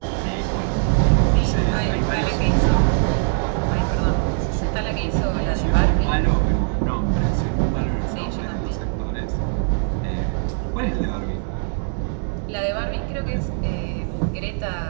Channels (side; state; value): left; silent; 62 dB below the other